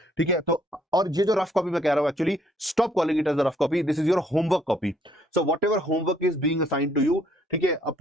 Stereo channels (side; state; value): both; normal; correlation 0.66